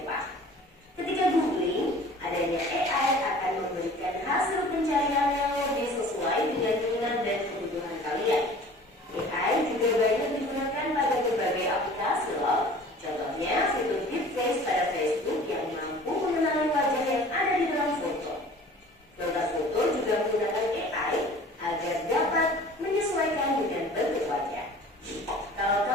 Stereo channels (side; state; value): both; normal; correlation 0.46